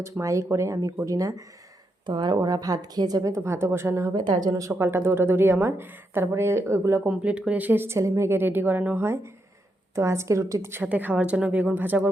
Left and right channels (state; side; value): normal; both; correlation 0.82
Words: মাই করে, আমি করি না। তো আর ওরা ভাত খেয়ে যাবে, তো ভাতও বসানো হবে, তার জন্য সকালটা দৌড়াদৌড়ি আমার। তারপরে ওইগুলো কমপ্লিট করে এসে ছেলে মেয়েকে রেডি করানো হয়। তো আজকে রুটির সাথে খাওয়ার জন্য বেগুন ভাজা